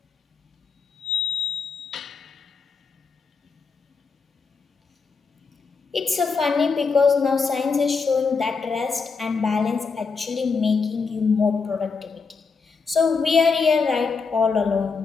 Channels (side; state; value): right; quieter; 4.9 dB